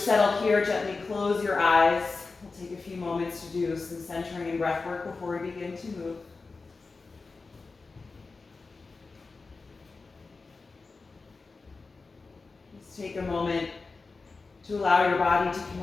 here, gently close your eyes. We'll take a few moments to do some centering and breath work before we begin to move. Just take a moment to allow your body to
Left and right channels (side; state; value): right; quieter; 4.0 dB